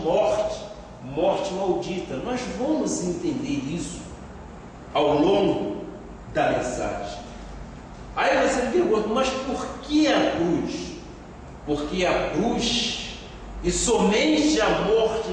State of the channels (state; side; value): identical; both; correlation 1.00